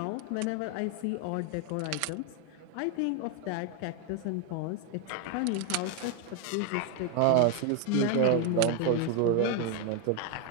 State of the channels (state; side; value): different; both; correlation 0.01